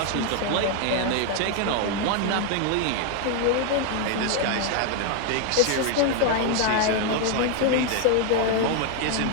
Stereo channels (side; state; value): both; different; correlation 0.01